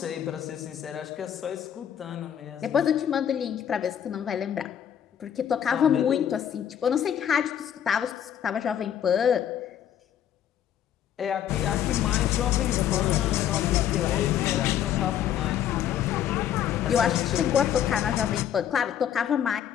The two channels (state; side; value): quieter; right; 9.9 dB